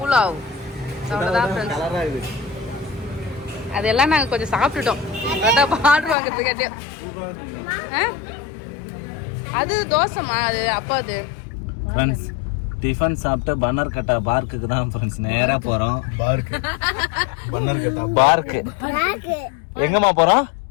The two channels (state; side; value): drops out; right; at 6.2 s